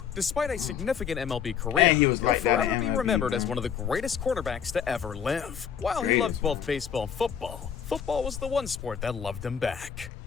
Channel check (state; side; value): quieter; right; 7.9 dB